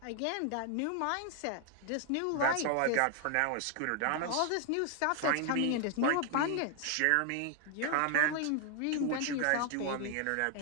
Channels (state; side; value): different; both; correlation 0.00